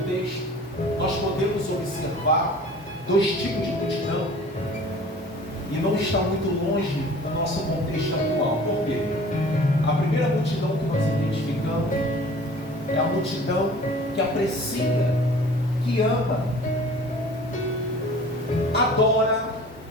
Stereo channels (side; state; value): both; normal; correlation 0.46